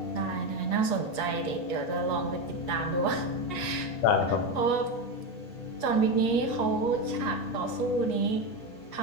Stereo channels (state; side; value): late; right; 8.3 ms